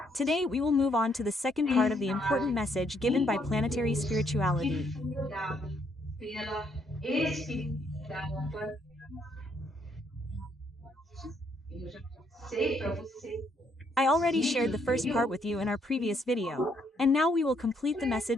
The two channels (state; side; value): normal; both; correlation 0.71